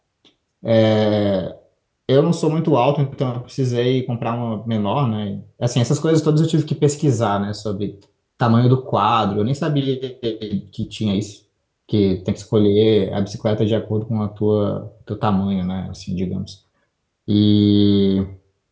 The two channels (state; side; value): identical; both; correlation 1.00